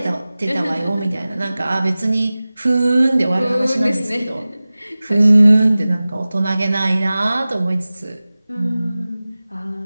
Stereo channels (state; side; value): inverted; both; correlation -0.98